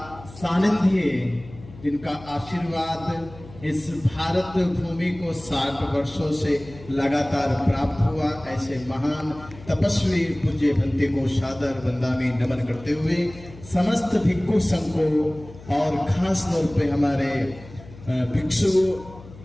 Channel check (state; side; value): noise; left; hum, 18 dB below the sound